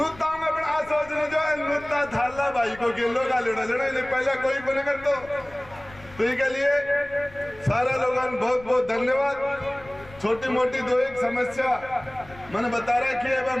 अपना सोचने जो है नुता थाला भाई को गेलो का लेटो लेना पहले कोई बने कर तो के लिए सारा लोगों बहुत बहुत धन्यवाद। छोटी मोटी दो एक समस्या मैंने बता रहा कि अब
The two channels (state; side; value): noise; left; rumble, 21 dB below the sound